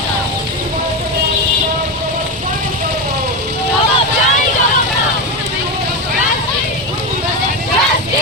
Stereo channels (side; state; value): both; normal; correlation 0.15